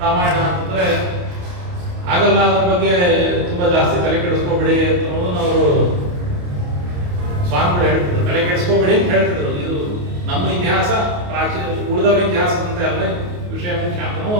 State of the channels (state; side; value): late; left; 28 ms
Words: ರಾಮಾಯಣ ಅಂತಂದ್ರೆ ಆಗಲ್ಲ, ಅದ್ರ ಬಗ್ಗೆ ತುಂಬಾ ಜಾಸ್ತಿ ತಲೆ ಕೆಡಿಸ್ಕೋಬೇಡಿ ಅನ್ನೋದನ್ನ ಅವರು ಸ್ವಾಮಿಗಳು ಹೇಳ್ತಿದ್ರು. ತಲೆ ಕೆಡಿಸ್ಕೋಬೇಡಿ ಅಂತ ಹೇಳ್ತಿದ್ರು. ಇದು ನಮ್ಮ ಇತಿಹಾಸ ಪ್ರಾಚೀನ ಉಳಿದವರ ಇತಿಹಾಸದಂತೆ ಅಲ್ಲ, ವಿಷಯ ಮುಖ್ಯ ಅಂತ